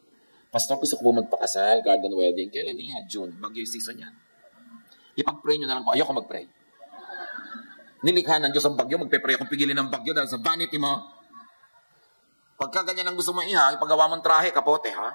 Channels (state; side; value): inverted; both; correlation -1.00